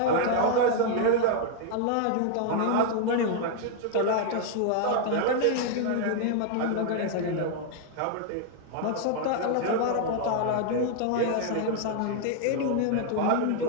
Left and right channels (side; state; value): both; different; correlation 0.00